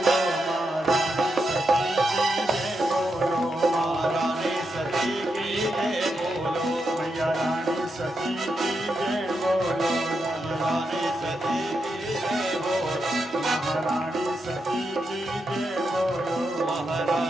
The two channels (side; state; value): both; normal; correlation 0.84